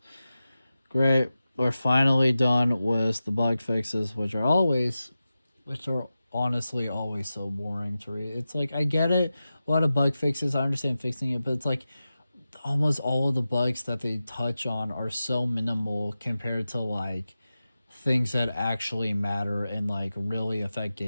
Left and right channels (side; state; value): both; inverted; correlation -0.93